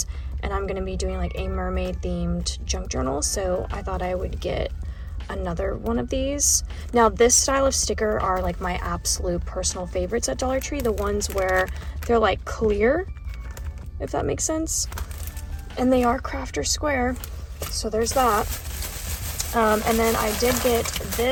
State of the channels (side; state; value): both; identical; correlation 1.00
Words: And I'm going to be doing like a mermaid themed junk journal. So I thought I would get another one of these. Now this style of sticker are like my absolute personal favorites at Dollar Tree. The ones where they're like clear, if that makes sense. And they are crafter square. So there's that. And then I did get